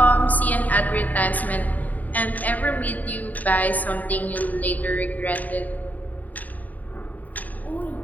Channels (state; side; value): late; right; 0.078 ms